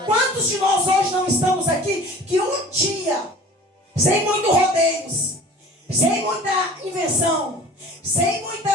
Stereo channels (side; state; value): both; normal; correlation 0.44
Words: Quantos de nós hoje não estamos aqui que um dia, sem muito rodeios, sem muita invenção, sem